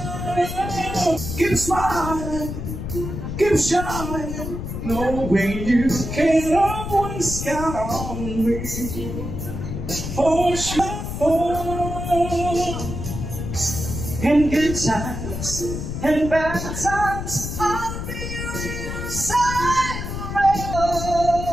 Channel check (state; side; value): noise; left; rumble, 6 dB below the sound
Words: keep smiling. Keep shining, knowing you can always count on me. For sure, in good times and bad times, I'll be your side